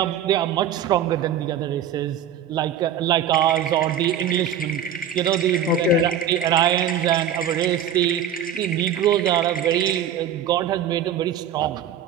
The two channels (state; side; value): quieter; left; 8.3 dB